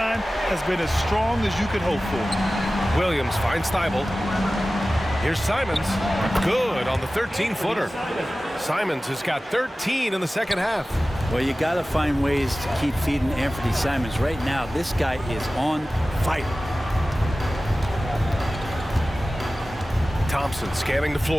has been as strong as you could hope for. Williams finds Thibault. Here's Simons. Good on the 13-footer. Simons has got 13 in the second half. Well, you got to find ways to keep feeding Anthony Simons. Right now, this guy is on fire. Thompson scanning the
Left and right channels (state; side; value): normal; both; correlation 0.96